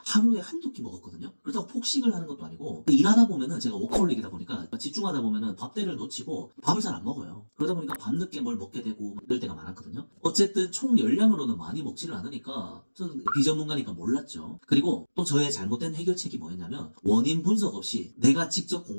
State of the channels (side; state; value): both; inverted; correlation -1.00